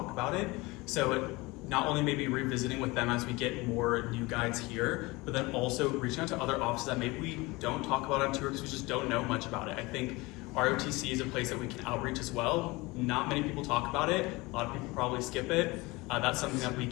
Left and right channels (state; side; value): quieter; right; 22.9 dB